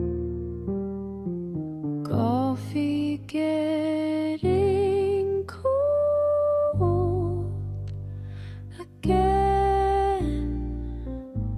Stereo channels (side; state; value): both; identical; correlation 1.00